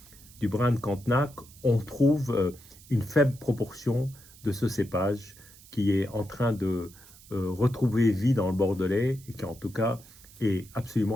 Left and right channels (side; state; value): right; noise; hiss, 22 dB below the sound